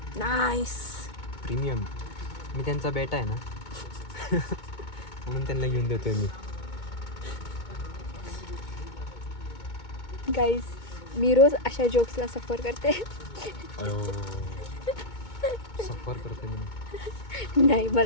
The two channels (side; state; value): right; late; 2.2 ms